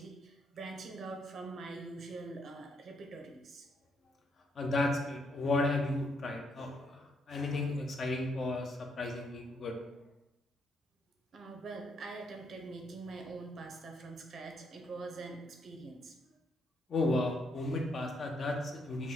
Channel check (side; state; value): both; normal; correlation 0.75